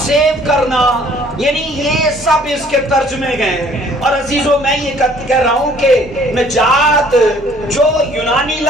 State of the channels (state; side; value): normal; both; correlation 0.58